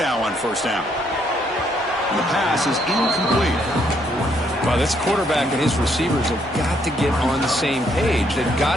on first down. And the pass is incomplete. Well, this quarterback and his receivers have got to get on the same page. They've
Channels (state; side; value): normal; both; correlation 0.71